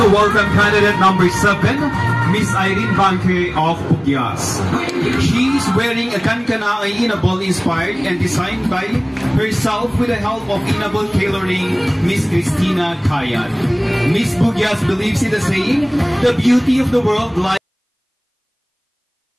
welcome candidate number 7, Miss Irene Banque of Pugyas. She is wearing a kankana Inabol inspired and designed by herself with the help of Inabol tailoring Miss Christina Kayat. Miss Pugyas believes in the saying, the beauty of the world lies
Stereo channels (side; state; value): both; identical; correlation 1.00